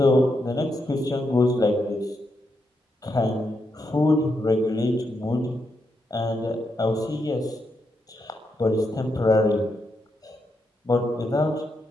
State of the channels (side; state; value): both; normal; correlation 0.82